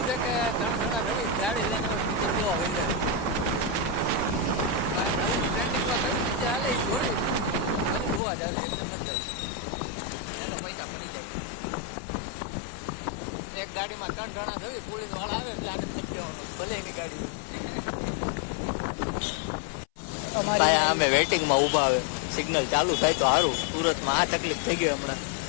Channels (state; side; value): drops out; right; at 8.2 s